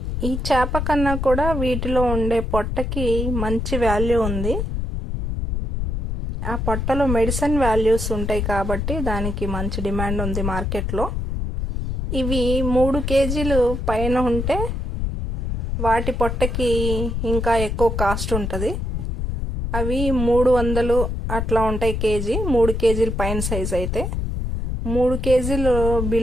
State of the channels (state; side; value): noise; left; rumble, 2 dB below the sound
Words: ఈ చేప కన్నా కూడా వీటిలో ఉండే పొట్టకి మంచి వాల్యూ ఉంది. ఆ పొట్టలో మెడిసిన్ వాల్యూస్ ఉంటాయి కాబట్టి దానికి మంచి డిమాండ్ ఉంది మార్కెట్లో. ఇవి 3 కేజీలు పైన ఉంటే వాటి పొట్టకి ఇంకా ఎక్కువ కాస్ట్ ఉంటుంది. అవి 300 అట్లా ఉంటాయి కేజీ. 3 కేజీలు పైన సైజ్ అయితే. 3 కేజీలు